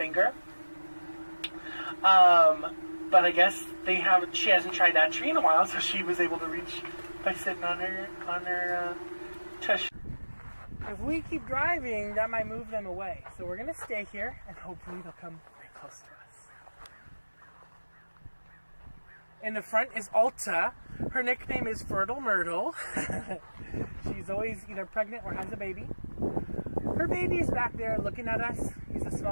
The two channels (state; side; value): inverted; both; correlation -1.00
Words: But I guess she hasn't tried that tree in a while, so she was able to reach by sitting on her tush. If we keep driving, that might move them away. So we're gonna stay here, and hopefully they'll come very close to us. In the front is Alta. Her nickname is Fertile Myrtle. She's always either pregnant or has a baby. Her baby is back there looking at us. He's a